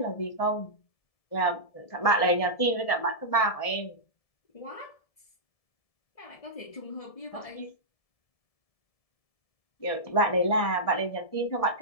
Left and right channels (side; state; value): right; late; 1.7 ms